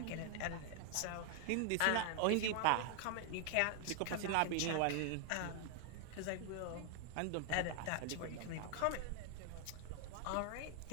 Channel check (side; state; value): both; different; correlation 0.00